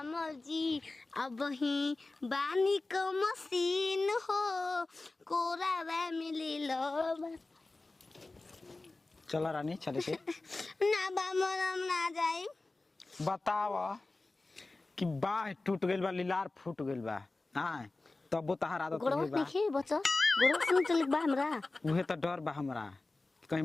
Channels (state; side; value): quieter; right; 3.2 dB